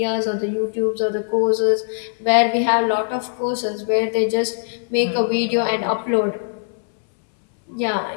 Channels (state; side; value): silent; right; 63 dB below the other